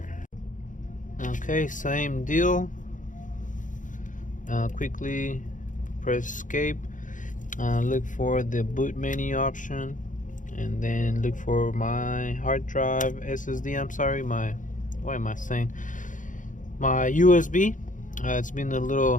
Okay, same deal. Quickly press escape. Look for the boot menu option, and then look for my hard drive SSD. I'm sorry, what am I saying? My USB. It's been a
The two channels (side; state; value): right; late; 0.37 ms